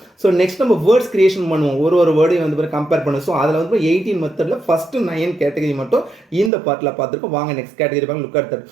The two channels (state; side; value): drops out; left; at 6.5 s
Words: ஸோ நெக்ஸ்ட் நம்ம வேர்ட்ஸ் கிரியேஷன் பண்ணுவோம். ஒரு வேர்டையும் வந்து கம்பேர் பண்ணுவோம். ஸோ அதில் வந்து 18 மெத்தடில் ஃபர்ஸ்ட் 9 கேட்டகரி மட்டும் இந்த பார்ட்டில் பார்த்துருக்கோம். வாங்க நெக்ஸ்ட் கேட்டகரி பாருங்க. Look at that.